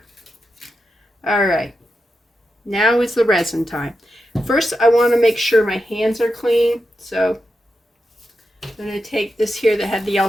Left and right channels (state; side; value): normal; both; correlation 0.88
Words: All right, now is the resin time. First, I want to make sure my hands are clean. So I'm going to take this here that had the